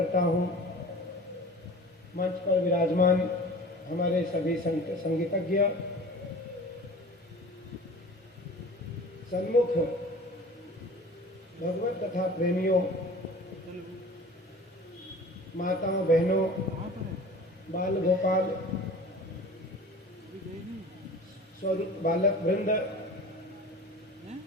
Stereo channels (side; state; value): both; normal; correlation 0.41